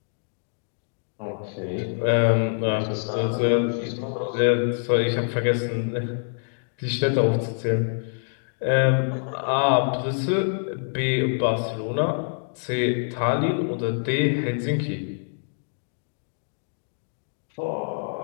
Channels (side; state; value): right; silent; digital silence